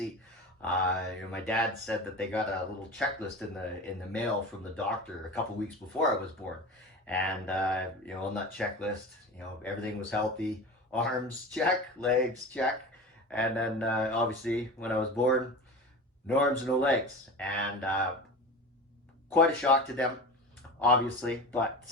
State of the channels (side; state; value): both; normal; correlation 0.30